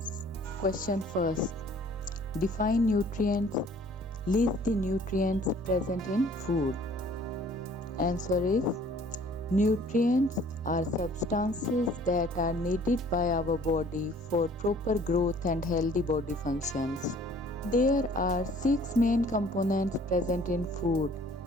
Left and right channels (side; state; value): both; normal; correlation 0.55